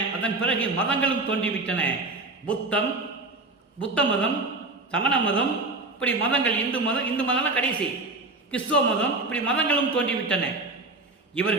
அதன் பிறகு மதங்களும் தோன்றிவிட்டன. புத்தம், புத்த மதம், சமண மதம், இப்படி மதங்கள், இந்து மதம் கடைசி, கிறிஸ்துவ மதம், இப்படி மதங்களும் தோன்றிவிட்டன.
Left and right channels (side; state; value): left; quieter; 3.1 dB